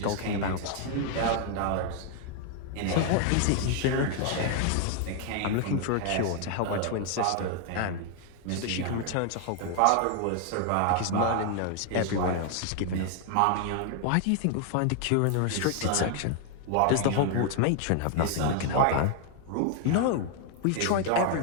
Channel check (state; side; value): different; both; correlation 0.00